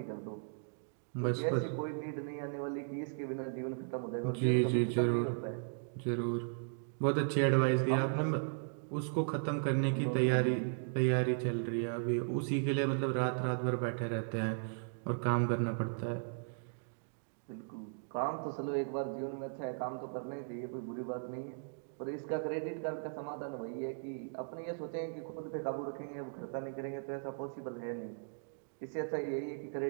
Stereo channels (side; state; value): left; silent; digital silence